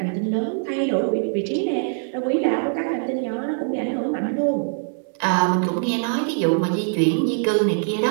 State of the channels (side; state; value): left; silent; digital silence